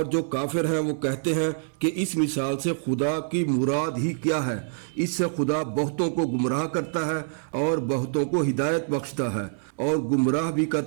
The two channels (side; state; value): left; silent; digital silence